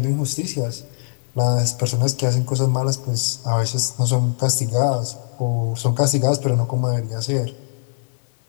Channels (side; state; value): right; silent; 59 dB below the other